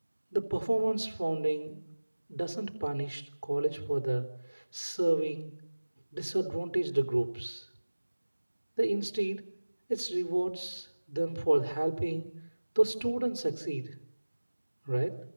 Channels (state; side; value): inverted; both; correlation -1.00